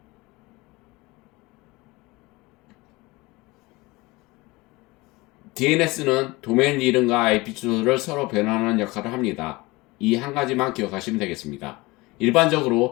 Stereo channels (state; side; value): quieter; right; 22.4 dB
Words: DNS는 도메인 이름과 IP 주소를 서로 변환하는 역할을 합니다. 이 한 가지만 기억하시면 되겠습니다.